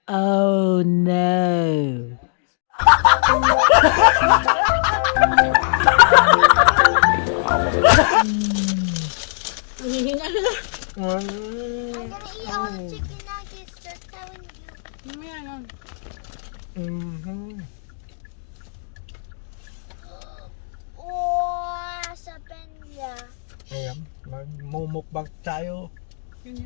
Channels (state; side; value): silent; right; 64 dB below the other